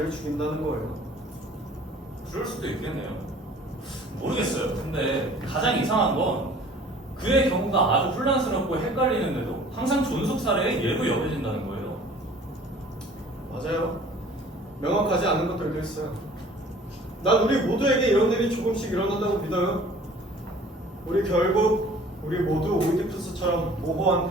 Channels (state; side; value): normal; both; correlation 0.50